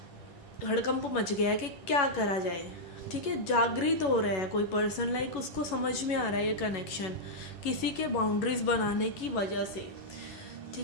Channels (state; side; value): late; right; 11 ms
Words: हड़कंप मच गया है कि क्या करा जाए, ठीक है। जागृत हो रहा है कोई पर्सन, उसको समझ में आ रहा है ये कनेक्शन किसी के बाउंड्रीज बनाने की वजह से,